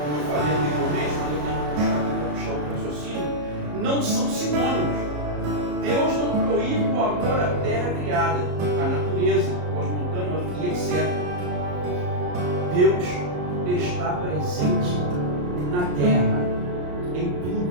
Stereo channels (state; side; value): late; left; 34 ms